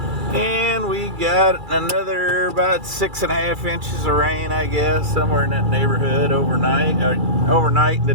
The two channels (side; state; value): left; late; 2.3 ms